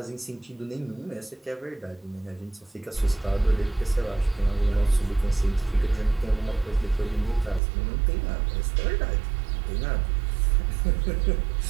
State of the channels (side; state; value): left; drops out; at 7.6 s